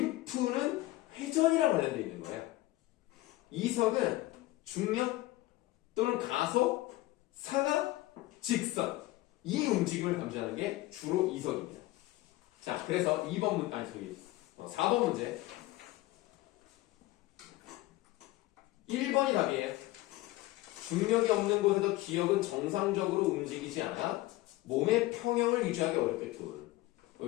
회전이랑 관련되어 있는 거예요. 이석은 중력 또는 가속, 상하, 직선 이 움직임을 감지하는 게 주로 이석입니다. 자, 그래서 4번 문제 1번이 답이에요. 중력이 없는 곳에도 기억은 정상적으로 움직이지 않아 몸의 평형을 유지하기 어렵겠군.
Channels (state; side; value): quieter; right; 18.2 dB